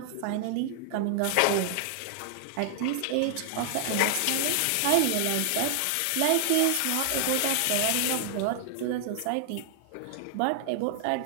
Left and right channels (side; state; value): both; different; correlation 0.00